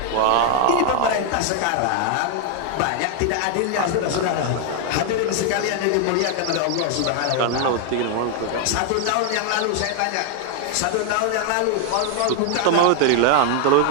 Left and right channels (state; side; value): different; both; correlation 0.00